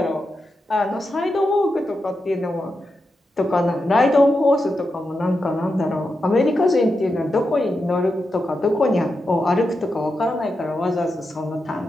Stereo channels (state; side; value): normal; both; correlation 0.88